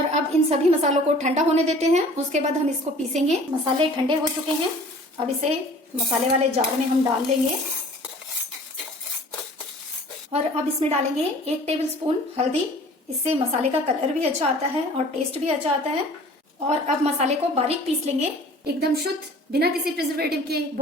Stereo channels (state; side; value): normal; both; correlation 0.48